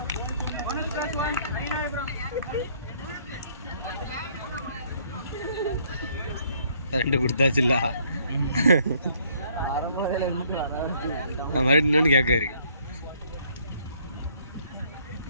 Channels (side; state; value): both; inverted; correlation -0.64